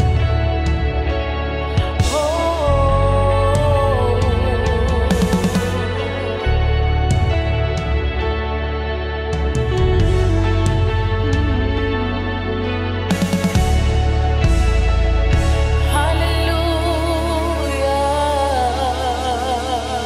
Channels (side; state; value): both; identical; correlation 1.00